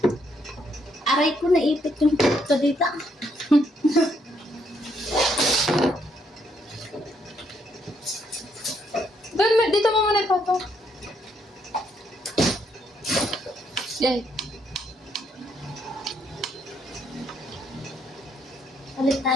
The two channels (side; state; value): both; normal; correlation 0.73